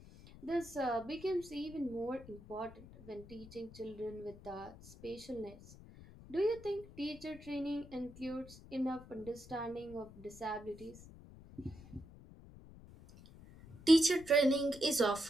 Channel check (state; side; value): noise; left; rumble, 18 dB below the sound